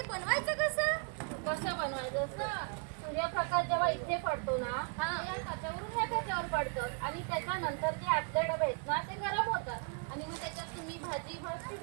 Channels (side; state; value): left; quieter; 38.2 dB